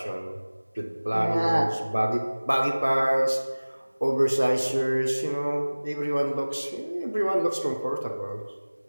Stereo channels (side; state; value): both; inverted; correlation -1.00